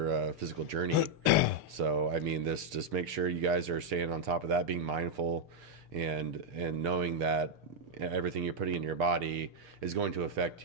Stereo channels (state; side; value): late; left; 6.7 ms